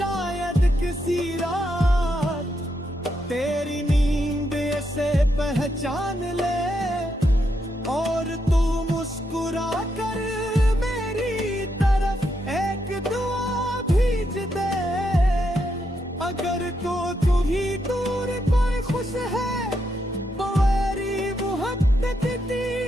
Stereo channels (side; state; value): both; normal; correlation 0.81